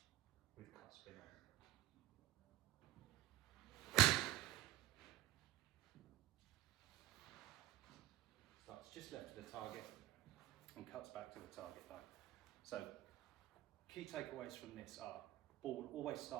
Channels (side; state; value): left; quieter; 15.8 dB